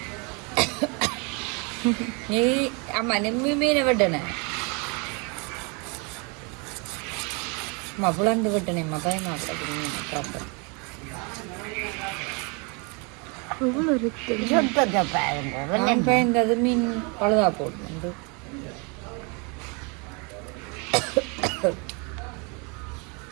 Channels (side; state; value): left; quieter; 32.3 dB